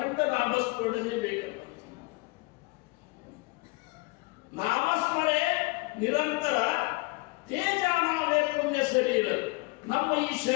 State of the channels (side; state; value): right; quieter; 25.2 dB